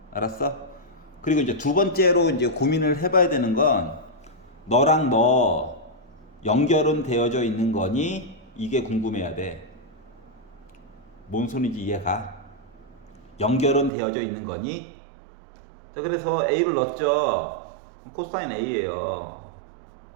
알았어? 그리고 이제 두 번째로 이제 고민을 해봐야 되는 건 너랑 너 연결은 되어져 있는 거니? 이게 궁금해야 돼. 뭔 소리인지 이해가? 연결은 되어져 있는 거니? 자, 그래서 a를 넣었죠. 코사인 a예요.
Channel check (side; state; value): left; drops out; at 13.9 s